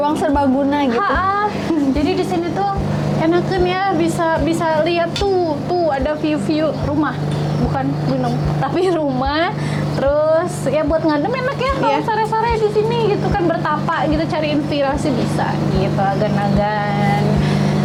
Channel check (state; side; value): identical; both; correlation 1.00